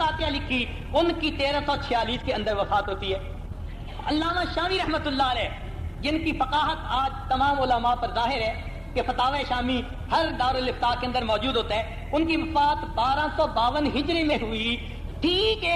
لکھی، ان کی 1346 کے اندر وفات ہوتی ہے۔ علامہ شامی رحمۃ اللہ علیہ جن کی فقاہت آج تمام علماء پر ظاہر ہے کہ فتاوی شامی ہر دارالافتاء کے اندر موجود ہوتا ہے، ان کی وفات 1252 ہجری میں ہوئی۔ ٹھیک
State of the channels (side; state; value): both; identical; correlation 1.00